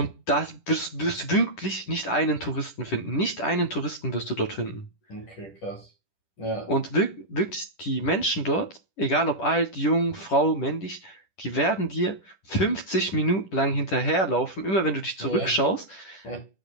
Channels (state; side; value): late; right; 10 ms